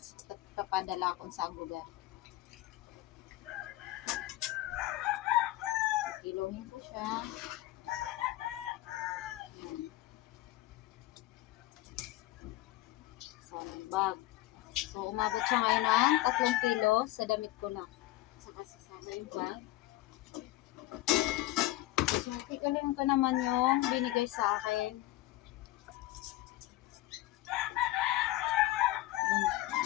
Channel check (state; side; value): quieter; right; 16.8 dB